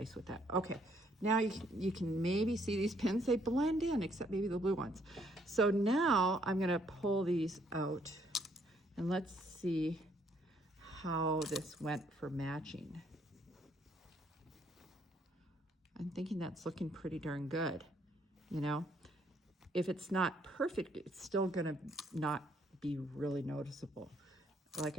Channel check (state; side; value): normal; both; correlation 0.68